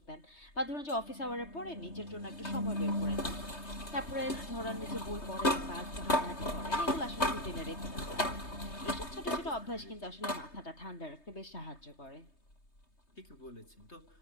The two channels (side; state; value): right; late; 3.2 ms